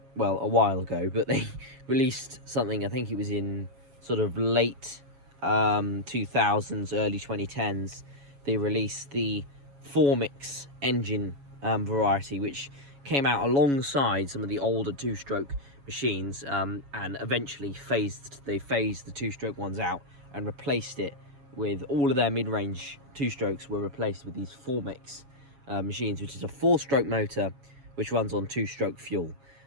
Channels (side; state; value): left; late; 7.2 ms